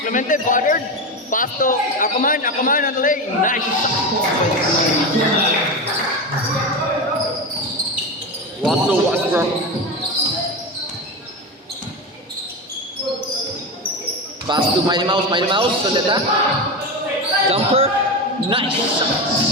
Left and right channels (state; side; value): normal; both; correlation 0.19